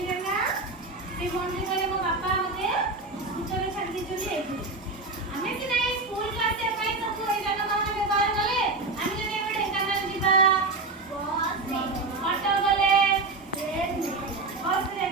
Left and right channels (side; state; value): left; quieter; 3.5 dB